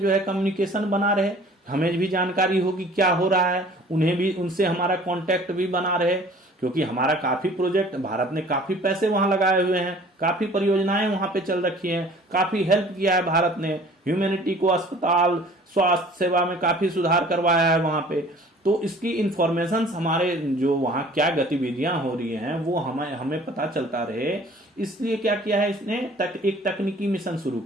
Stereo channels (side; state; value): both; normal; correlation 0.50